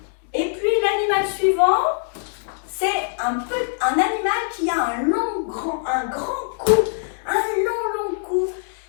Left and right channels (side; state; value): right; silent; 64 dB below the other